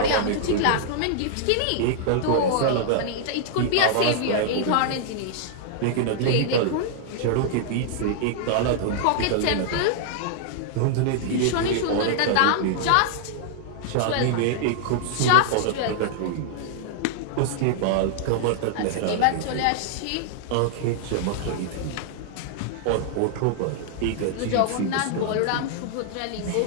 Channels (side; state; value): both; different; correlation -0.01